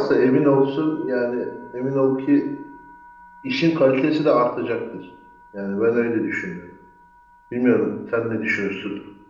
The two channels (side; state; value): both; identical; correlation 1.00